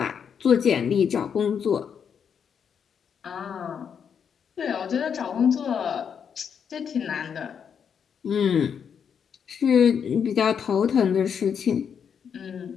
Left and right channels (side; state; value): right; quieter; 7.3 dB